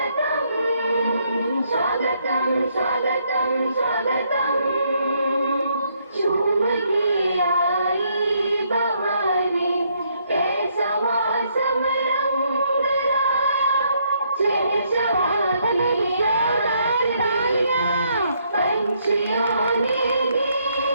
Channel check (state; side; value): inverted; both; correlation -0.72